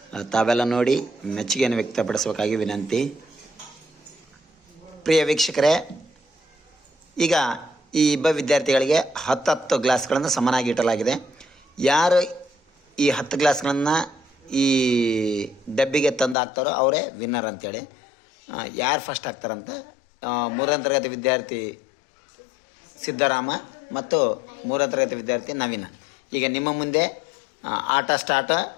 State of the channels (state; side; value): drops out; right; at 16.4 s